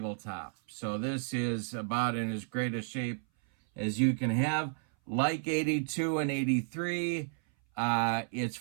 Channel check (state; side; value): silent; left; 56 dB below the other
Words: So this is about in as great a shape as you can have. Like 82 and 83, it's